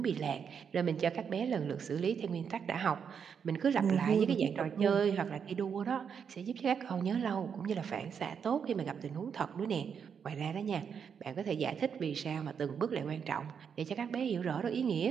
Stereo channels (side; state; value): left; quieter; 7.0 dB